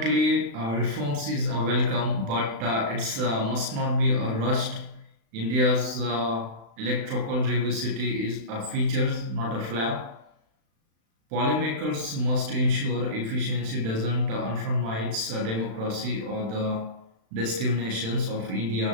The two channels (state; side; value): late; left; 36 ms